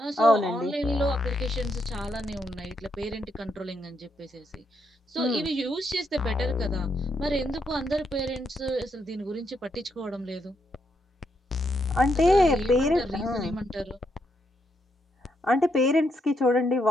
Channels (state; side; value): normal; both; correlation 0.78